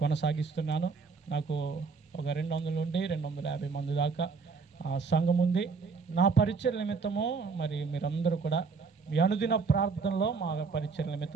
కొనసాగిస్తున్నాను. నాకు ఒక 200 నుండి 250 మంది దాకా సంఘం ఉంది. నా పరిచర్య నిమిత్తము మరి మీరందరూ కూడా మీ అనుదిన ప్రార్థనలో మా పరిచర్య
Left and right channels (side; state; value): left; quieter; 4.9 dB